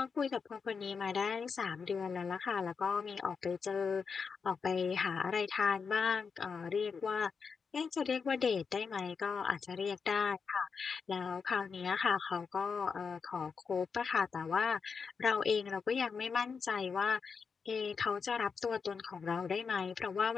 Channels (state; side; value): quieter; right; 5.6 dB